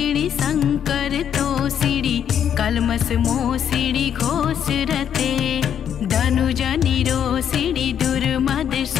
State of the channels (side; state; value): right; quieter; 9.0 dB